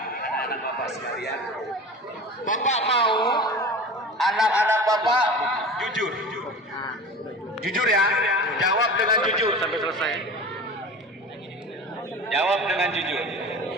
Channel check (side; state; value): both; normal; correlation 0.34